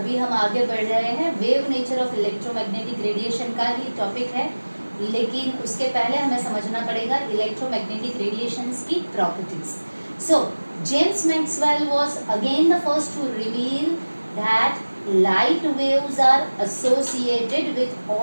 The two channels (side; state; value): both; inverted; correlation -1.00